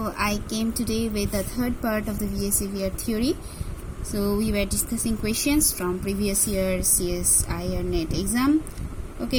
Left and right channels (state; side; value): identical; both; correlation 1.00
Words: I came today with the third part of the VSEPR theory. So we were discussing questions from previous year CSIR NET exam.